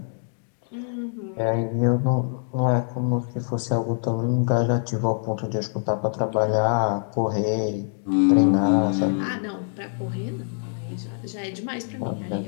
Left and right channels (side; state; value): right; silent; 62 dB below the other